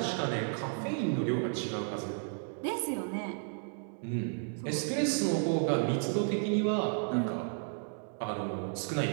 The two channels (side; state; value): left; silent; 56 dB below the other